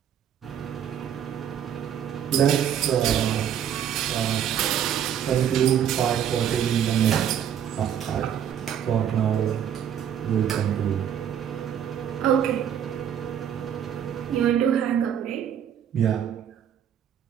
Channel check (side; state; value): left; quieter; 9.3 dB